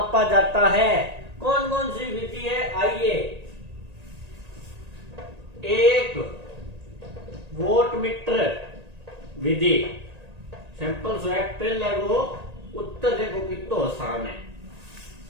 जाता है। कौन कौन सी विधि है, आइए। एक वोल्टमीटर विधि, सिंपल स्वैप पहले वो उत्तर देखो कितना आसान है।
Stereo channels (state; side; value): late; left; 1.8 ms